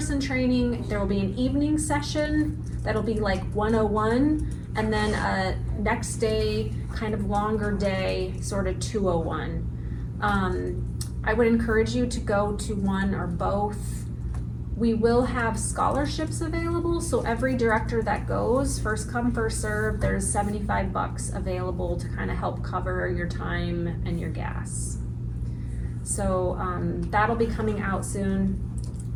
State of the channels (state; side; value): identical; both; correlation 1.00